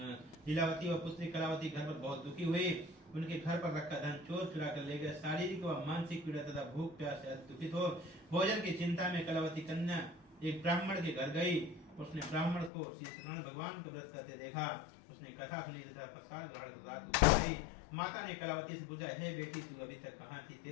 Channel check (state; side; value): drops out; right; at 12.7 s